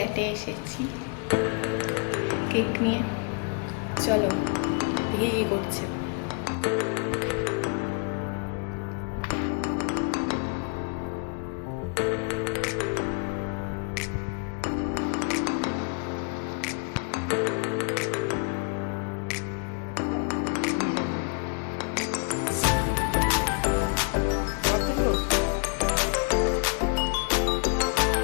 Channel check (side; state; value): right; quieter; 36.4 dB